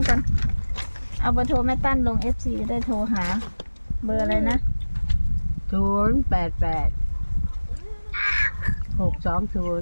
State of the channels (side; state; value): both; inverted; correlation -1.00